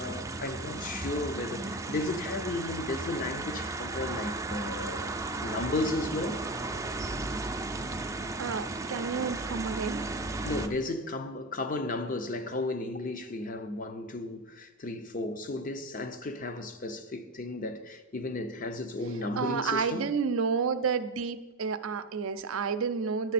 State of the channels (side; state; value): both; normal; correlation 0.22